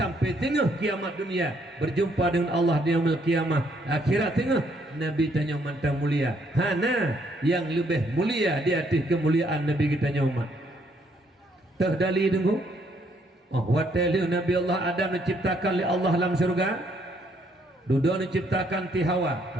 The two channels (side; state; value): both; normal; correlation 0.69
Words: tengah kiamat dunia berjumpa dengan Allah di yaumil kiamah akhirat tengah Nabi tanya mantang mulia hana yang lebih mulia di atas kemuliaan Nabi kitanya umat terdali tunggu watali Nabi Allah Adam diciptakan oleh Allah dalam surga dudu diciptakan ti